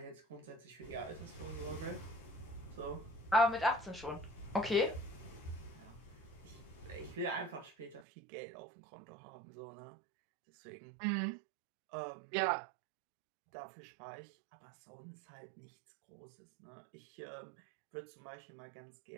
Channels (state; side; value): drops out; left; at 8.0 s